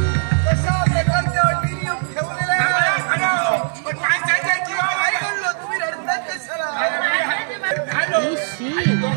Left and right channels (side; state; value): left; silent; digital silence